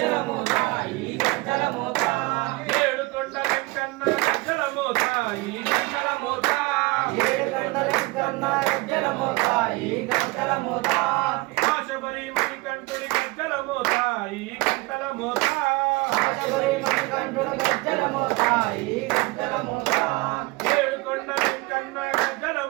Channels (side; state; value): left; quieter; 23.5 dB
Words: మోత ఈ గజ్జల మోత ఏడుకొండ వెంకన్న గజ్జల మోత ఈ గజ్జల మోత ఏడుకొండ వెంకన్న గజ్జల మోత ఈ గజ్జల మోత ఆశబరి మణికంఠుని గజ్జల మోత ఈ గజ్జల మోత ఆశబరి మణికంఠుని గజ్జల మోత ఈ గజ్జల మోత ఏడుకొండ వెంకన్న గజ్జల